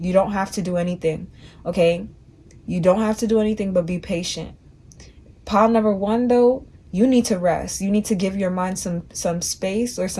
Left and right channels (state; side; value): identical; both; correlation 1.00